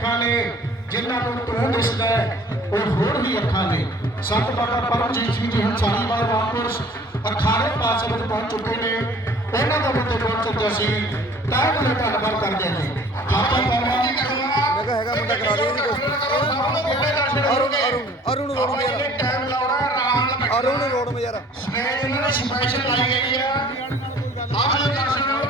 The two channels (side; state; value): both; normal; correlation 0.51